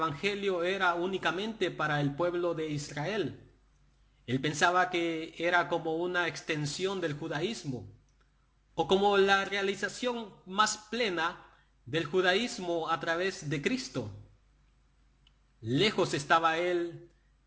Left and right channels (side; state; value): both; identical; correlation 1.00